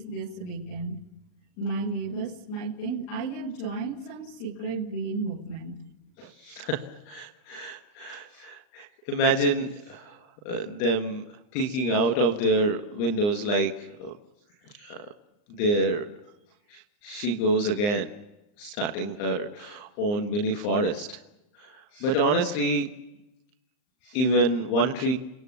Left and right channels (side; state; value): right; late; 39 ms